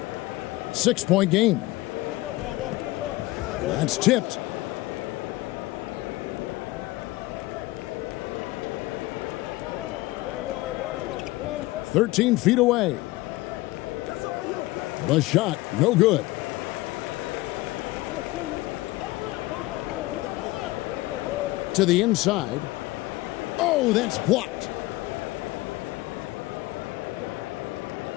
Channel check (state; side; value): quieter; right; 19.6 dB